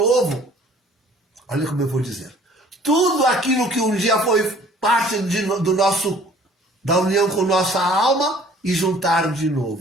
Olha como eu vou dizer. Tudo aquilo que um dia foi parte da união com nossa alma e juntar de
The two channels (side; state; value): both; normal; correlation 0.53